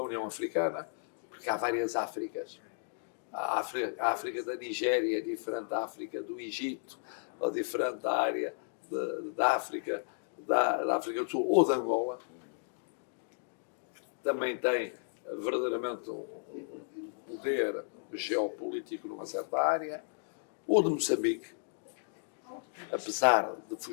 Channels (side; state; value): right; silent; digital silence